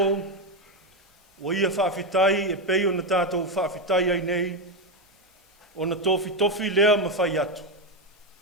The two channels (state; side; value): normal; both; correlation 0.09